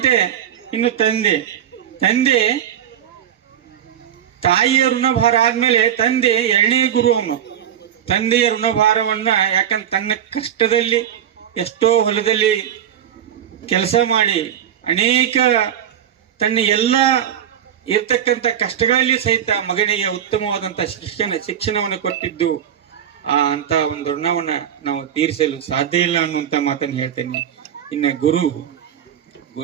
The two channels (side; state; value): left; quieter; 9.7 dB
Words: ಇನ್ನು ತಂದೆ ತಾಯಿಯ ಋಣಭಾರ ಆದ್ಮೇಲೆ ತಂದೆ ಎರಡನೇ ಗುರು ಅವನು. ತಂದೆಯ ಋಣಭಾರವನ್ನ ಯಾಕಂದ್ರೆ ತನ್ನ ಕಷ್ಟದಲ್ಲಿ ಎಷ್ಟೋ ಹೊಲದಲ್ಲಿ ಕೆಲಸ ಮಾಡಿ ಅನೇಕ ತನ್ನ ಎಲ್ಲ ಇರ್ತಕ್ಕಂಥ ಕಷ್ಟಗಳಲ್ಲಿ ಸಹಿತ ಮಗನಿಗೆ ಉತ್ತಮವಾದಂತ ಶಿಕ್ಷಣವನ್ನು ಕೊಟ್ಟಿದ್ದು ಅಂತ ಒಂದು ಋಣವನ್ನ ನಾವು ತೀರಿಸಲು ಸಾಧ್ಯ ಇಲ್ಲ ಅನ್ನುವಂತ ಮಾತನ್ನು ಹೇಳ್ತೇನೆ. ಇನ್ನು